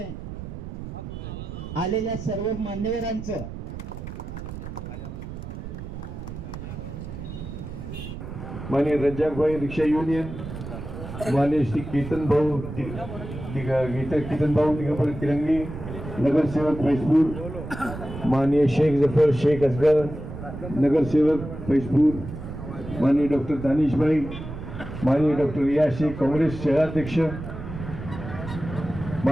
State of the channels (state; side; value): noise; right; rumble, 9 dB below the sound